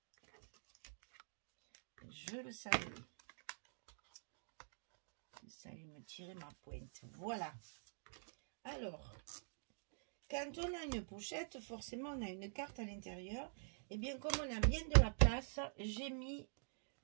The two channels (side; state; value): left; silent; digital silence